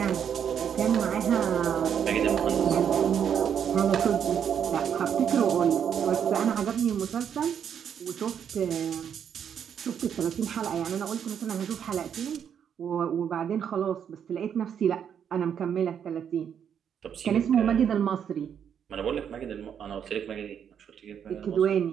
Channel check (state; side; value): quieter; left; 8.3 dB